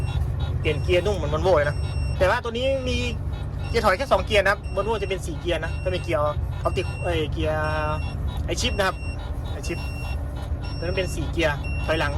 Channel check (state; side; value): identical; both; correlation 1.00